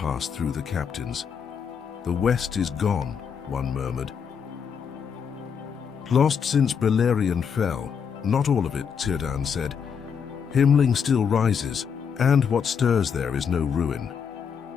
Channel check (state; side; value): quieter; right; 6.9 dB